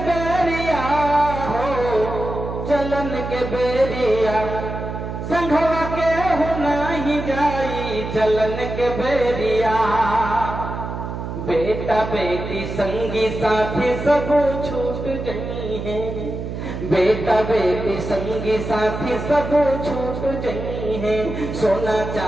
बेरिया हो, चलन के बेरिया संघवा के हो नहीं जाई, चलन के बेरिया। बेटा बेटी संगी साथी सब छूट गई है, बेटा बेटी संगी साथी सब छूट गई है, सोना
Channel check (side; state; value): right; noise; hum, 6 dB below the sound